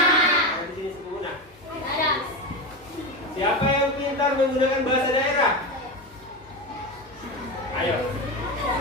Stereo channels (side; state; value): both; normal; correlation 0.19